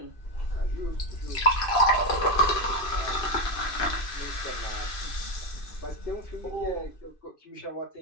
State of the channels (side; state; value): right; late; 2.5 ms